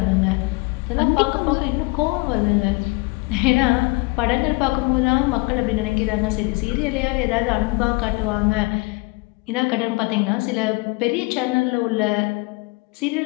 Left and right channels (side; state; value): right; quieter; 27.1 dB